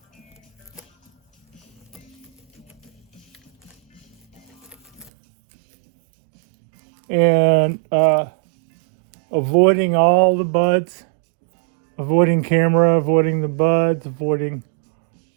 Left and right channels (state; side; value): drops out; left; at 5.1 s